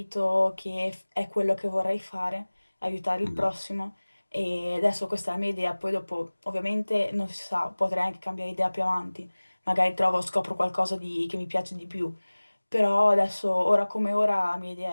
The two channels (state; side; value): inverted; both; correlation -1.00